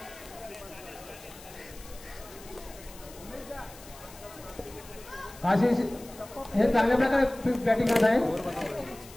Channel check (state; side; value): noise; left; hiss, 19 dB below the sound